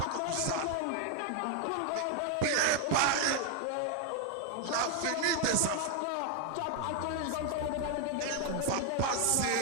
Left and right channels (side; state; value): both; different; correlation 0.00